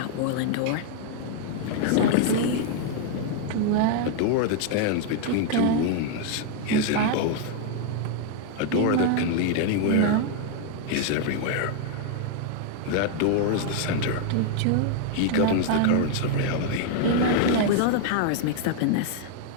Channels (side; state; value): both; different; correlation 0.00